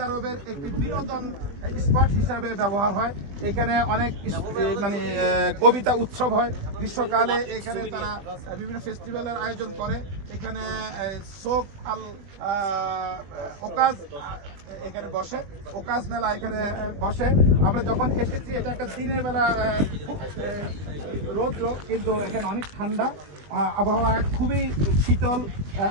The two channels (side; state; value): left; late; 21 ms